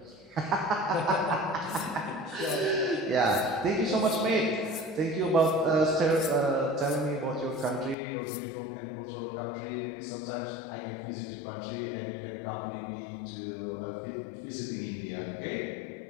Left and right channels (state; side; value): drops out; right; at 8.0 s